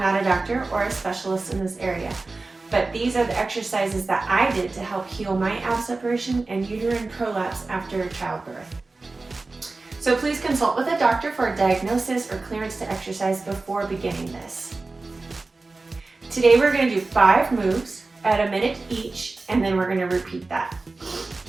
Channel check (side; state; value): left; quieter; 3.5 dB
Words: a doctor or a specialist in this area, but these are the exercises that I did to help heal my ab separation and uterine prolapse after childbirth. So please consult with a doctor for a diagnosis or clearance to exercise before beginning this. Today we're going to do 5 moves at a minute each, and then we're going to repeat that.